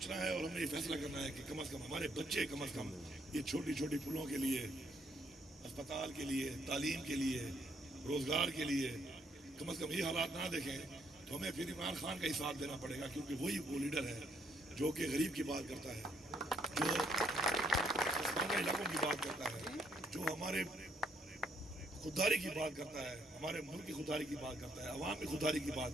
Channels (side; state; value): both; normal; correlation 0.71